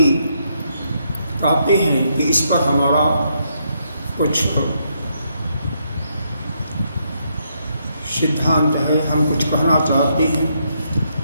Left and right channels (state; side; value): inverted; both; correlation -0.76